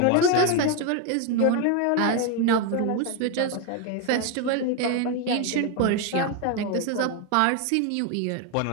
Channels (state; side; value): different; both; correlation 0.01